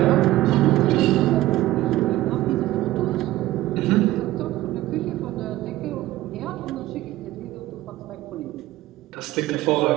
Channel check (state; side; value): quieter; left; 16.2 dB